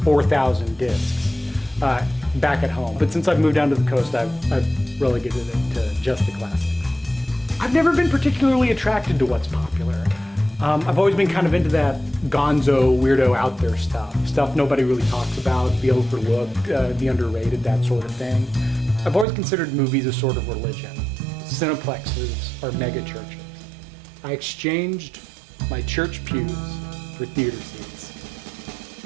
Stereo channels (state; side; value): drops out; left; at 19.2 s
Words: 4,000 discs back at home. But since I've moved down to the coast, I've relegated it to just the classics. I've never been particularly attracted to what's popular. I've always been kind of into that gonzo, weirdo, out there stuff nobody really talks about, the overlooked, the underrated, that sort of thing. I've always considered movies a sort of religion. Cineplexes are mega churches. I exchanged my church pews for theater seats.